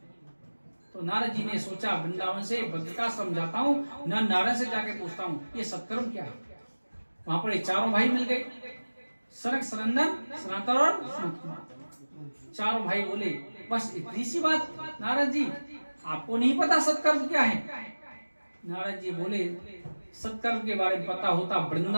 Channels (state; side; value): inverted; both; correlation -1.00